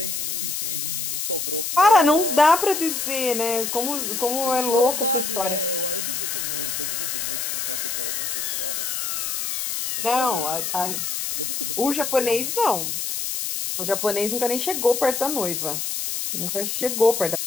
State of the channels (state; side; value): noise; left; hiss, 2 dB below the sound